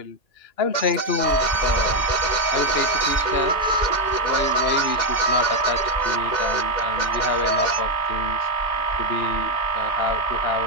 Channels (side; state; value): right; late; 2.1 ms